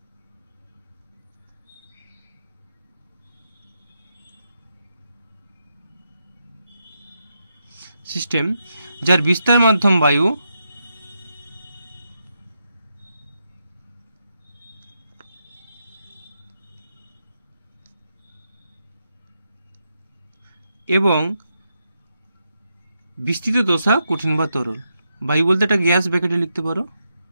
যার বিস্তার মাধ্যম বায়ু এবং বিস্তৃত দশা কঠিন বা তরল। বায়ু বলতে একটা গ্যাস ব্র্যাকেটে লিখতে পারো,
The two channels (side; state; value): both; inverted; correlation -0.84